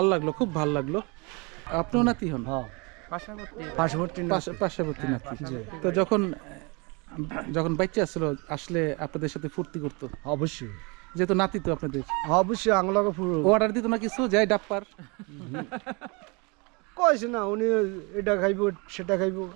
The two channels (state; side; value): quieter; left; 29.5 dB